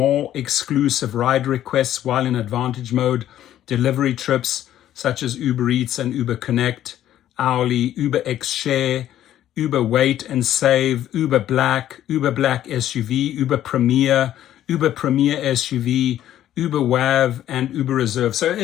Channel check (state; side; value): quieter; right; 12.1 dB